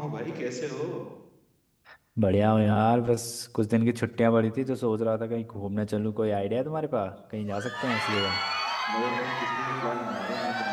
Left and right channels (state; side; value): identical; both; correlation 1.00